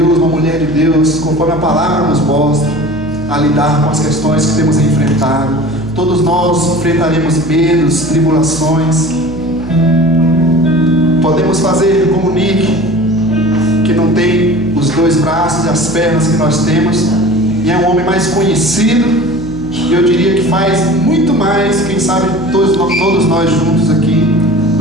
uma mulher de Deus, conforme a palavra nos mostra, a lidar com as questões que temos enfrentado. Todos nós enfrentaremos medos, tribulações. Podemos fazer como Nick, que não tem os dois braços e as pernas que nós temos, e é um homem mais conhecido. E eu diria que faz muito mais, quem sabe todos nós juntos aqui,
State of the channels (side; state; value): right; noise; hum, 13 dB below the sound